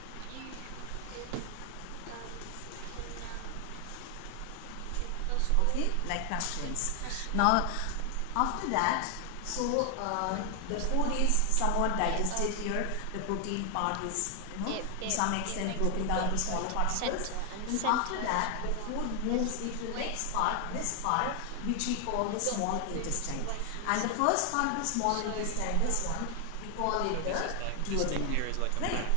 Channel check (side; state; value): both; different; correlation 0.00